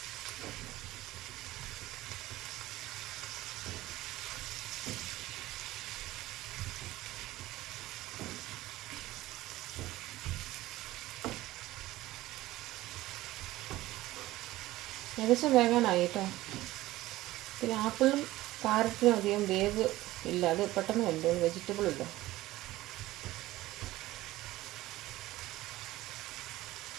ഏകദേശം വേകാനായി കേട്ടോ. പിന്നെ ആപ്പിളും കാരറ്റിനും അധികം വേവ് ഇല്ല, അത് പെട്ടെന്ന് വെന്തോളും, വെജിറ്റബിൾ ഇല്ല.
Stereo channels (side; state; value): left; quieter; 16.9 dB